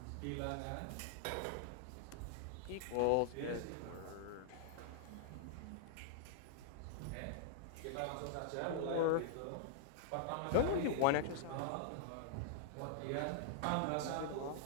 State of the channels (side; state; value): both; different; correlation -0.01